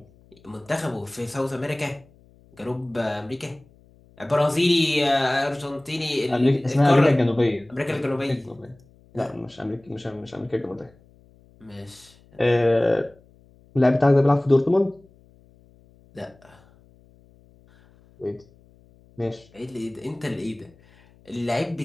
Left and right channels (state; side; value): noise; left; hum, 29 dB below the sound